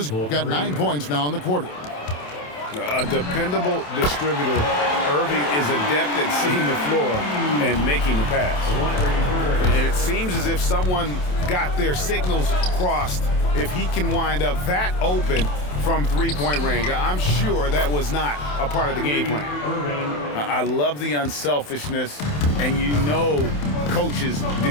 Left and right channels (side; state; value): right; late; 27 ms